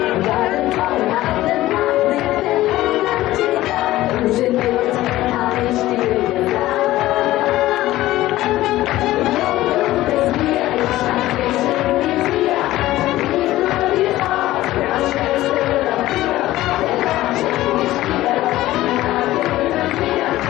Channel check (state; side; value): quieter; right; 16.0 dB